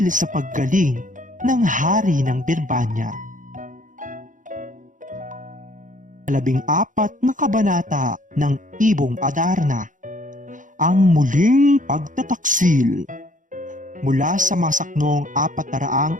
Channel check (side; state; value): left; late; 0.37 ms